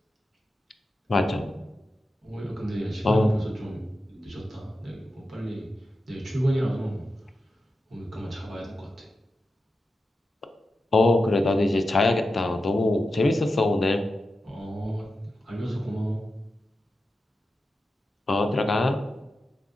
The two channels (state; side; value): normal; both; correlation 0.90